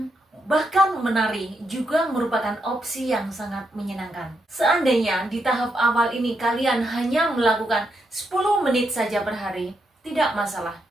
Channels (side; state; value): both; normal; correlation 0.81